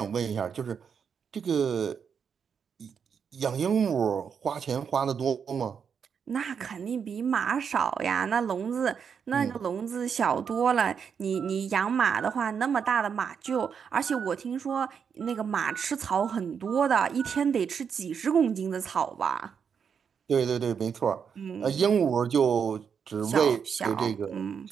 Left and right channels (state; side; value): quieter; left; 6.9 dB